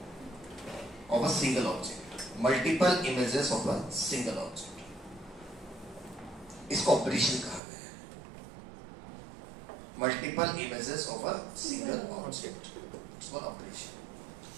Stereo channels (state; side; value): drops out; left; at 7.6 s